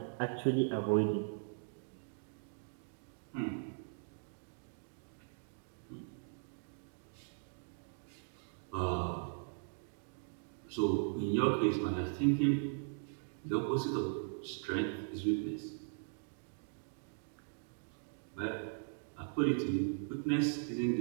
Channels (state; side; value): silent; left; digital silence